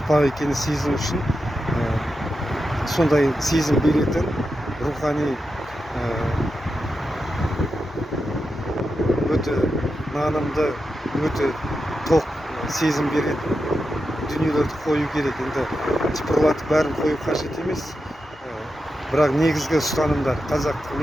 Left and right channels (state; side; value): normal; both; correlation 0.89